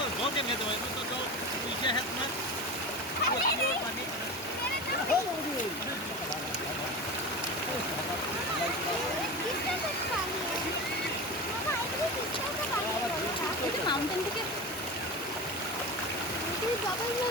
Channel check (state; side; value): normal; both; correlation 0.27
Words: धो के दो तो जो पीछे है तुम्हें মাউন্টেন থেকে डबल